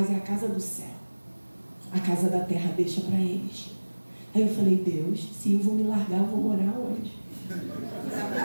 é a casa do céu. A casa da terra deixa para eles. Aí eu falei, Deus, se eu vou me largar, eu vou morar onde?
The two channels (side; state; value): both; inverted; correlation -1.00